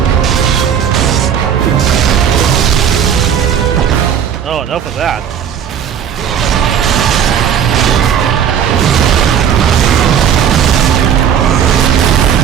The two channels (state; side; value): quieter; left; 8.4 dB